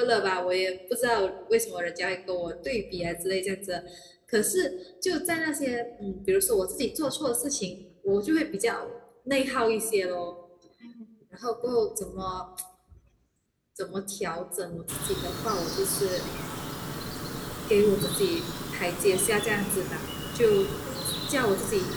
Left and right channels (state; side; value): identical; both; correlation 1.00